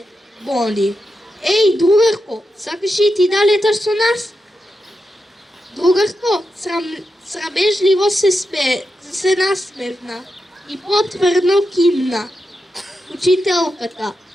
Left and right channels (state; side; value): normal; both; correlation 0.88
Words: Боди. Еј, другарко, сакаш и ти да леташ со нас? Другарко, срамежливо се насмевна и потврдно кимна. Учителката: